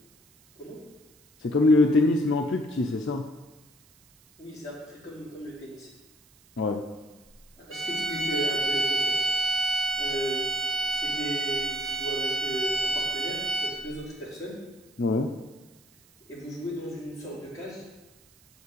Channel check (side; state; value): right; noise; hiss, 29 dB below the sound